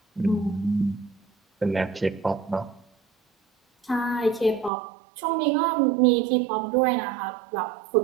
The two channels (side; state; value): left; drops out; at 4.7 s